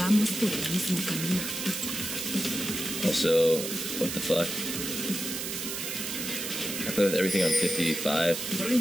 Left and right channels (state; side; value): noise; right; hiss, 4 dB below the sound